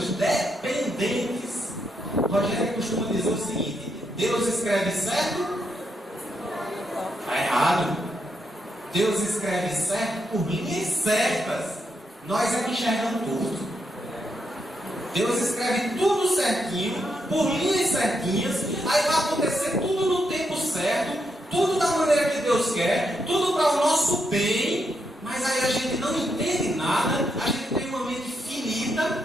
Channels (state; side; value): normal; both; correlation 0.81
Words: dependentes. Rogério costuma dizer o seguinte: Deus escreve certo, está errado. Deus escreve certo por linhas certas. Nós é que enxergamos tudo. Deus escreve tudo certinho, por linhas certinhas. Aí vai acontecer tudo no tempo certo, tudo da maneira que Deus quer, tudo para o nosso bem. Mas aí a gente não entende nada, a gente tem uma mente finita,